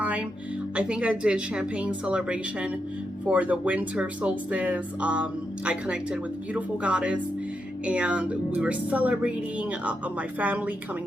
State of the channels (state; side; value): normal; both; correlation 0.84